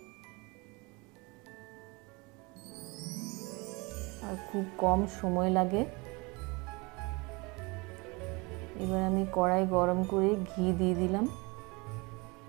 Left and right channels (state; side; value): quieter; left; 26.8 dB